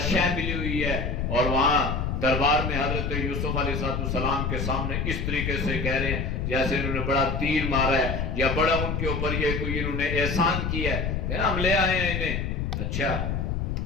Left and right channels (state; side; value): noise; left; rumble, 1 dB below the sound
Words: شے ملی ہوئی ہے اور وہاں دربار میں حضرت یوسف علیہ السلام کے سامنے اس طریقے سے کہہ رہے ہیں جیسے انہوں نے بڑا تیر مارا ہے یا بڑا ان کے اوپر یہ کوئی انہوں نے احسان کیا ہے کہ نا ہم لے آئے ہیں انہیں. اچھا,